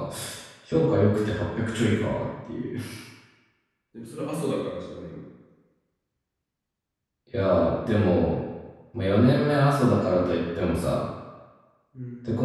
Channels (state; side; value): identical; both; correlation 1.00